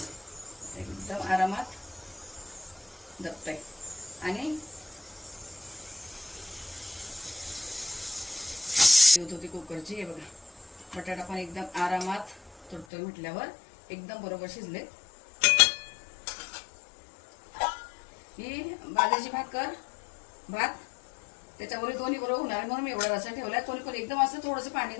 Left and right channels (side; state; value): right; drops out; at 12.9 s